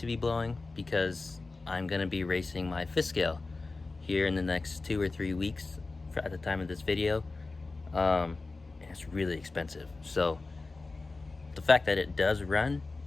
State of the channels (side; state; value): right; quieter; 3.6 dB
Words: be blowing because I'm gonna be racing my fifth scale here in the next 2 or 3 weeks at the time of this video. And it's really expensive. So the fact that it does run